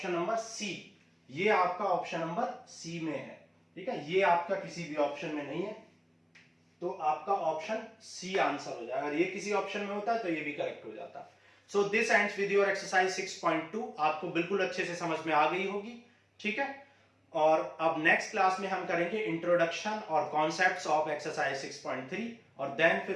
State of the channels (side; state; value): both; identical; correlation 1.00